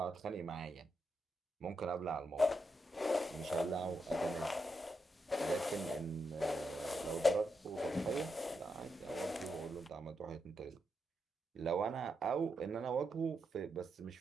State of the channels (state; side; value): normal; both; correlation 0.84